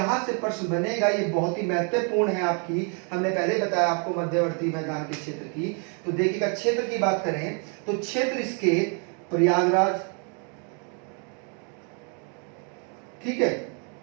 से प्रश्न बनेगा, ये बहुत ही महत्वपूर्ण है आपकी। हमने पहले बताया आपको मध्यवर्ती मैदान के क्षेत्र की। तो देखिएगा, क्षेत्र की बात करें तो क्षेत्र इसके प्रयागराज, ठीक है,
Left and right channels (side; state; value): left; quieter; 39.2 dB